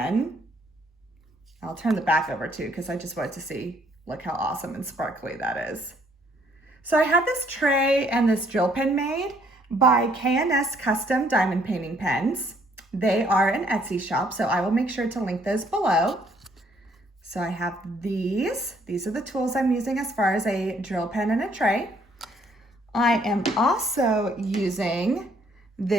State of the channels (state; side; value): normal; both; correlation 0.66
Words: I'll turn the back over too, because I just wanted to see, look how awesome and sparkly that is. So I have this tray and this drill pen made by K&S Custom Diamond Painting Pens. They are an Etsy shop, so I will make sure to link those below. So I have these. These are the tools I'm using as far as a drill pen and a tray. I am also using